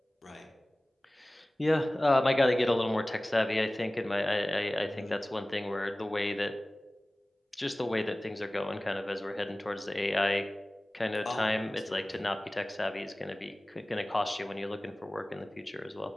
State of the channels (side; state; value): both; normal; correlation 0.98